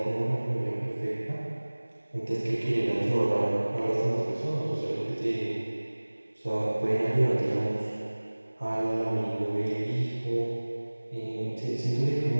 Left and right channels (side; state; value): both; inverted; correlation -1.00